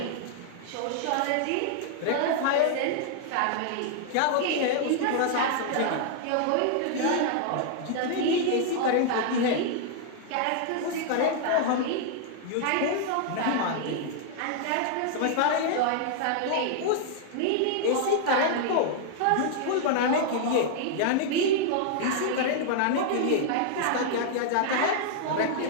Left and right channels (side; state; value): both; different; correlation -0.01